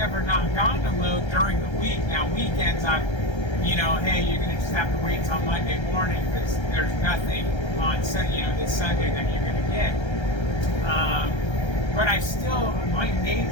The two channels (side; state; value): right; late; 1.3 ms